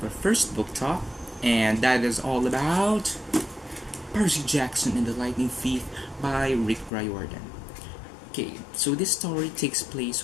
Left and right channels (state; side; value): drops out; right; at 6.9 s